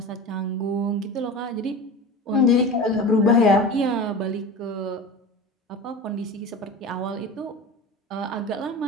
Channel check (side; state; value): both; normal; correlation 0.31